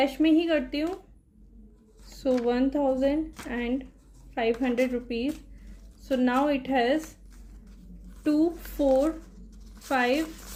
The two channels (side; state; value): both; identical; correlation 1.00